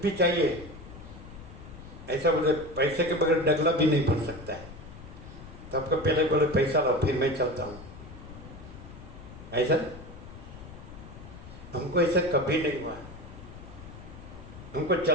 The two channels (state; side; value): noise; left; rumble, 15 dB below the sound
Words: भी चाहिए, ऐसा बोले पैसे के बगैर डगला भी नहीं पड़ सकता है, तो आपको पहले बोले पैसा लो फिर मैं चलता हूँ, ऐसा हमको ऐसा कभी नहीं हुआ। हमको